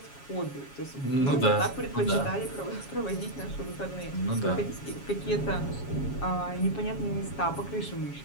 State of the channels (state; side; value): late; right; 7.2 ms